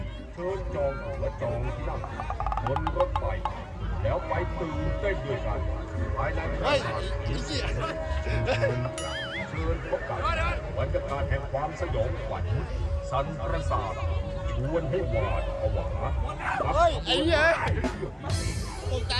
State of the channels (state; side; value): identical; both; correlation 1.00